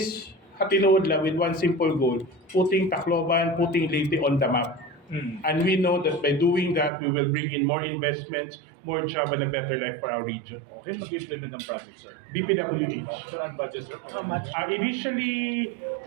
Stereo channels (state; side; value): drops out; left; at 6.9 s